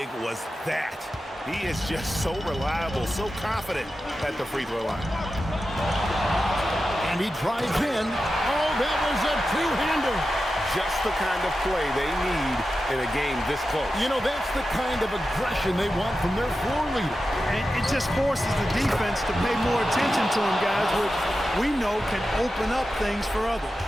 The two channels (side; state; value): both; normal; correlation 0.92